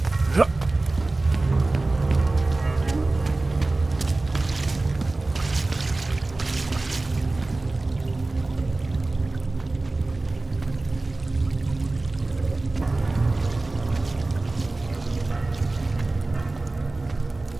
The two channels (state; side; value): quieter; left; 3.1 dB